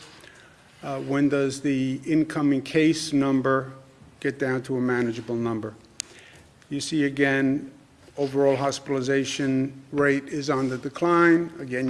When does the incoming case number get down to a manageable number? You see again, overall hospitalization rate is on the decline.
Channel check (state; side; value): identical; both; correlation 1.00